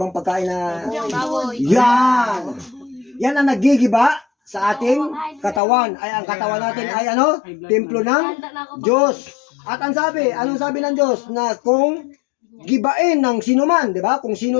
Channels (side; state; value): right; drops out; at 5.6 s